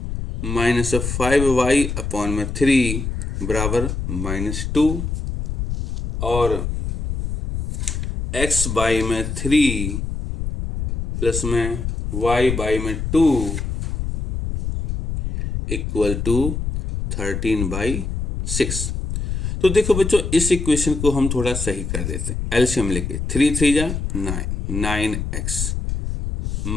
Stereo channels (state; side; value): noise; left; rumble, 4 dB below the sound